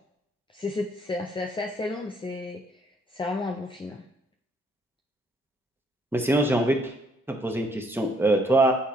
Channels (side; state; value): both; normal; correlation 0.67